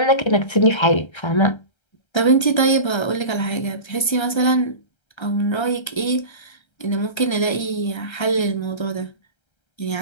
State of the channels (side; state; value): right; late; 1.3 ms